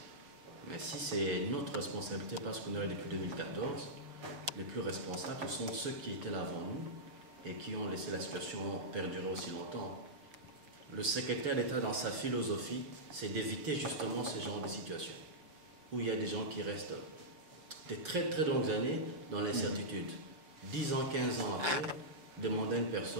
Mais si c'est notre responsabilité parce qu'on est là depuis 2014, les plus responsables, ce sont ceux qui étaient là avant nous et qui ont laissé la situation perdurer aussi longtemps. Le secrétaire d'État, dans sa philosophie, c'est d'éviter justement ce genre de situation où il y a des gens qui restent des très très longues années dans l'incertitude. 10 ans, 15 ans après, demander à une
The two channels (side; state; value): left; late; 6.1 ms